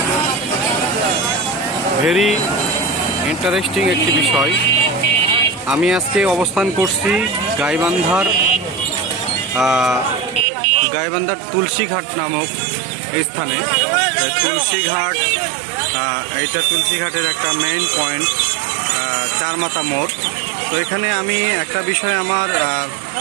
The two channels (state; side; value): drops out; left; at 10.5 s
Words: very interesting একটি বিষয়। আমি আজকে অবস্থান করছি গাইবান্ধার তুলসীঘাট নামক স্থানে। তুলসীঘাট, এইটা তুলসীঘাটের একটা মেইন পয়েন্ট, চারমাথা মোড়। তো এখানে আমি একটা বিষয় আমার